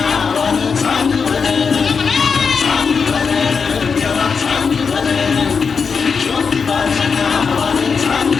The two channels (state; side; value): quieter; right; 5.6 dB